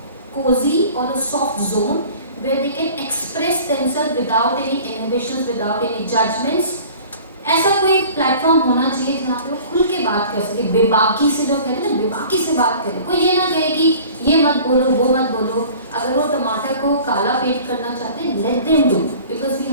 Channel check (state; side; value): inverted; both; correlation -0.45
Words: cozy or a soft zone where they can express themselves without any inhibitions, without any judgments. ऐसा कोई platform होना चाहिए जहाँ पे वो खुल के बात कर सके, बेबाकी से, लोग कहते हैं ना, बेबाकी से बात करें. कोई ये ना कहे कि ये मत बोलो, वो मत बोलो. अगर वो टमाटर को काला पेंट करना चाहते हैं, let them do, because we